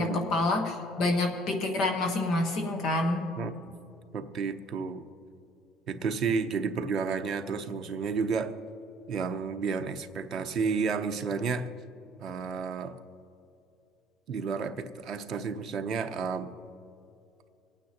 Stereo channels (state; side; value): normal; both; correlation 0.58